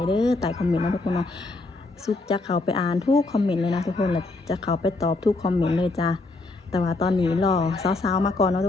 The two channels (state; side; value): quieter; right; 3.2 dB